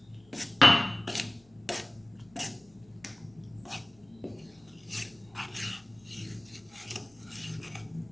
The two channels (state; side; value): noise; left; hum, 30 dB below the sound